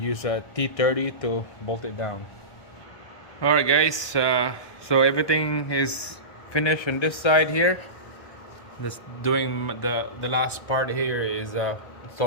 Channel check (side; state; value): right; late; 1.2 ms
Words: use a T30 to bolt it down. Alright guys, so everything is finished on this side here. Just doing the last part here is